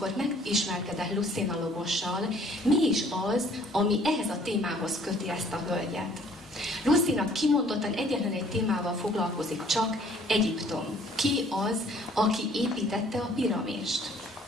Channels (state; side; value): normal; both; correlation 0.58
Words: megismerkedett Lucina Lobossal, mi is az, ami ehhez a témához köti ezt a hölgyet. Lucina kimondottan egyetlen egy témával foglalkozik csak, Egyiptom. Ki az, aki építette a piramist?